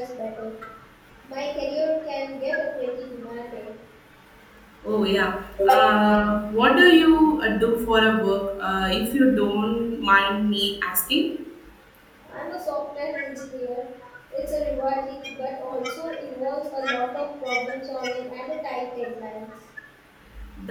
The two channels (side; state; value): both; identical; correlation 1.00